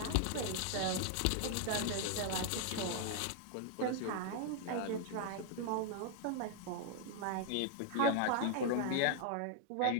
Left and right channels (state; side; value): different; both; correlation 0.00